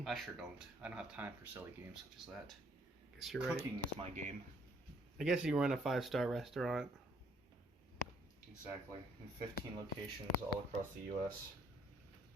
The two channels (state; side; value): normal; both; correlation 0.65